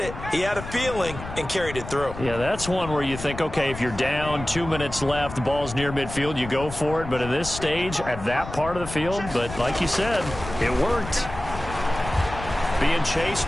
He had a feeling and carried it through. Yeah, that's one where you think, okay, if you're down, 2 minutes left, the ball's near midfield, you go for it. But at this stage, at that part of the field, but like you said, it worked. Being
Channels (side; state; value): left; noise; rumble, 11 dB below the sound